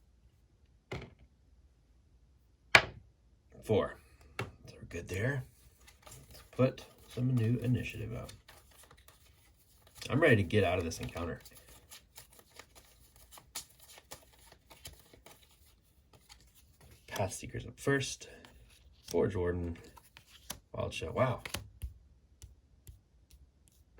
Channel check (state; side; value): identical; both; correlation 1.00